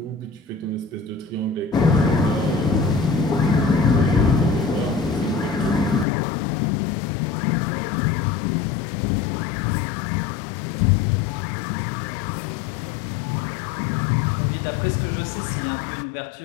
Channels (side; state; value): right; drops out; at 6.1 s